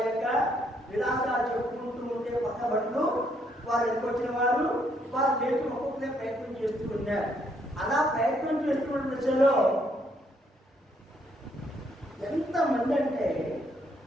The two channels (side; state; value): both; normal; correlation 0.71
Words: యొక్క విలాసాలు చెప్పుకుంటూ ఉంటే పక్క బట్టలు వారు ఎదుకొచ్చిన వారు వారు లేచి ఒక్కొక్కరే ప్రయత్నం చేస్తూ ఉన్నారు. అలా ప్రయత్నం చేస్తున్న దశలో ఎంతమంది అంటే